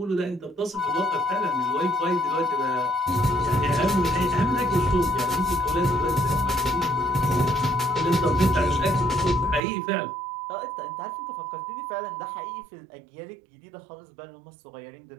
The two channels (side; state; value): left; drops out; at 9.6 s